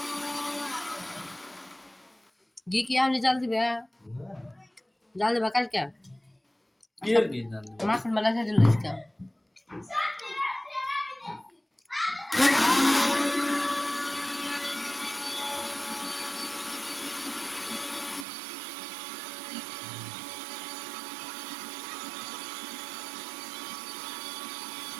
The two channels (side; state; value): left; drops out; at 18.2 s